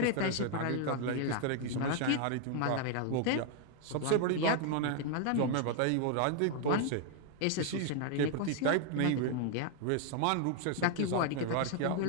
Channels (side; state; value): both; different; correlation 0.00